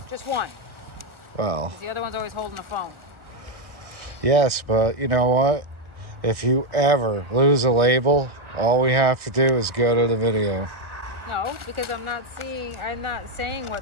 Just one. Well, The other one's always holding the phone. yes, but you know what? If you ever lose a label, all we have to do is go to the video. No, because I'm not saying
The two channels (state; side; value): late; left; 1.4 ms